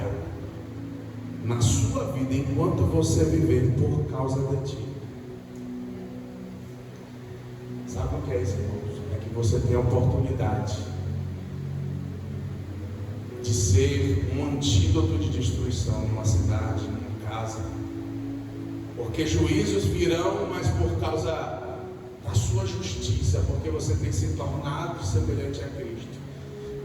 na sua vida enquanto você viver por causa de ti. Sabe o que é isso, irmãos? É que você tem a oportunidade de ser um antídoto de destruição numa cidade, numa casa, porque juízos virão, mas por causa da sua justiça, porque você tem se tornado semelhante a Cristo,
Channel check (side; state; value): both; identical; correlation 1.00